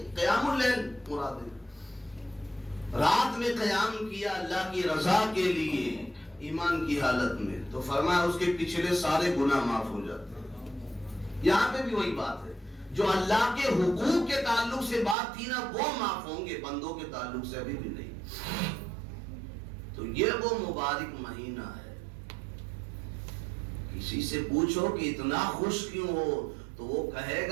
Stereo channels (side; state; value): left; drops out; at 15.2 s